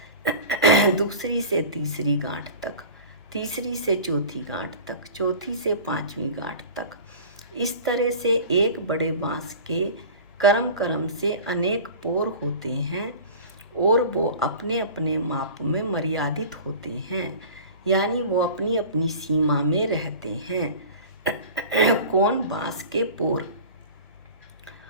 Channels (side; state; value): both; inverted; correlation -0.38